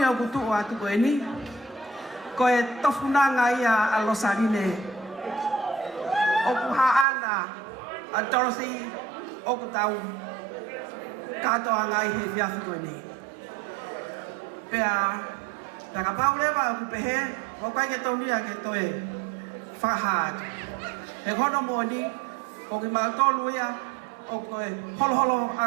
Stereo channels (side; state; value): left; drops out; at 7.1 s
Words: o kutu atu ko ni ko e tofunanga ia a losarine o ku ha ana a Dorothy o ku tau kato angai he fiafi ko ni pea ka paule ba ku pehe o kai ke toni a ke toe fa ha he kono mo ni o ki ma tolu ia o koe holo holo